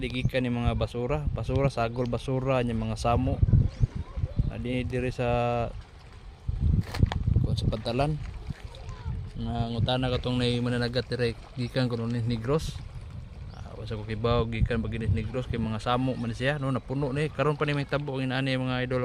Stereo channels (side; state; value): both; identical; correlation 1.00